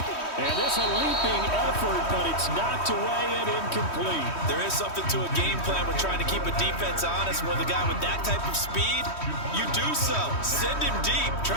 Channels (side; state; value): right; late; 3.1 ms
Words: And this a leaping effort, but it's knocked away and incomplete. There is something to a game plan with trying to keep a defense honest. With a guy with that type of speed, you do so. Send him deep,